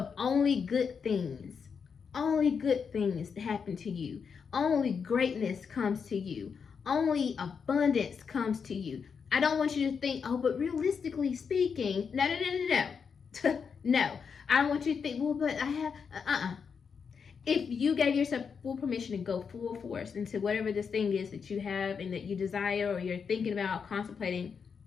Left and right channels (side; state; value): right; quieter; 6.2 dB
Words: only good things that happen to you. Only greatness comes to you. Only abundance comes to you. I don't want you to think, oh, but realistically speaking, no. No, I don't want you to think, well, but I have, If you gave yourself full permission to go full force into whatever this thing is that you have and that you desire or you're thinking about, contemplating,